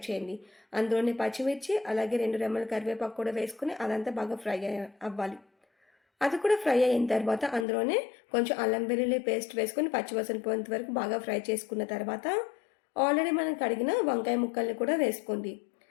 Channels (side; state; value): right; drops out; at 7.7 s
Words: చేయండి. అందులోనే పచ్చిమిర్చి అలాగే 2 రెమ్మల కరివేపాకు కూడా వేసుకొని అదంతా బాగా ఫ్రై అవ్వాలి. అది కూడా ఫ్రై అయిన తర్వాత అందులోనే కొంచెం అల్లం వెల్లుల్లి పేస్ట్ వేసుకొని పచ్చివాసన పోయేంత వరకు బాగా ఫ్రై చేసుకున్న తర్వాత ఆల్రెడీ మనం కడిగిన వంకాయ ముక్కల్ని కూడా వేసుకోండి.